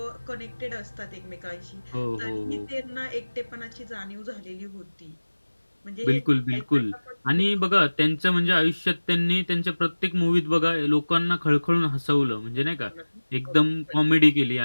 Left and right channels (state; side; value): inverted; both; correlation -1.00